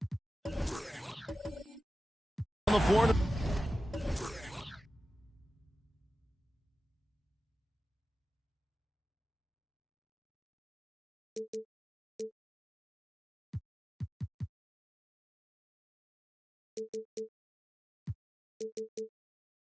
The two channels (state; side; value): normal; both; correlation 0.94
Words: On the floor.